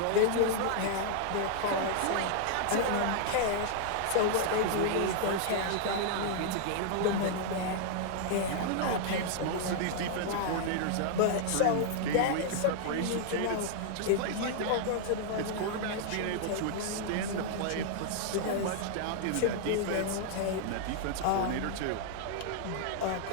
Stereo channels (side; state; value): both; different; correlation -0.01